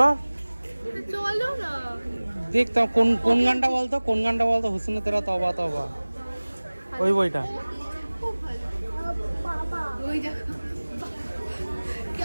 চলো না, দেখতাম কোন গানটা বলতো, কোন গানটা বলতো? হুসনে তেরা তবা তবা, ওই বইটা। ওই দেখো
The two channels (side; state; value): both; inverted; correlation -1.00